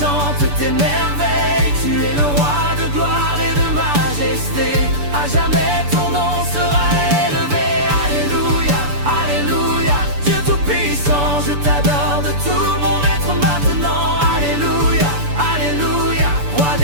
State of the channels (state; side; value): late; left; 6.9 ms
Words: tes merveilles. Tu es le roi de gloire et de majesté, à jamais ton nom sera élevé. Alléluia, alléluia, Dieu tout-puissant, je t'adore de tout mon être maintenant. Alléluia, alléluia, roi